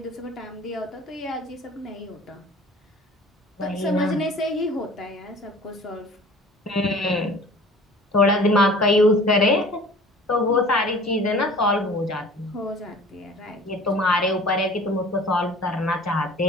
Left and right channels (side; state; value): both; normal; correlation 0.45